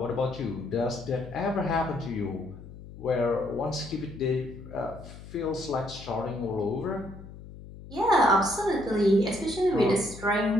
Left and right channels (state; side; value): noise; left; hum, 15 dB below the sound